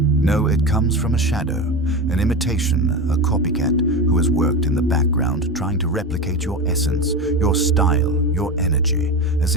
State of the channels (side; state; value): both; normal; correlation 0.22